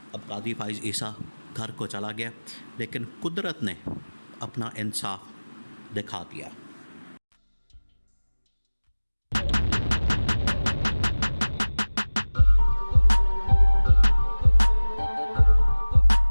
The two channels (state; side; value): inverted; both; correlation -1.00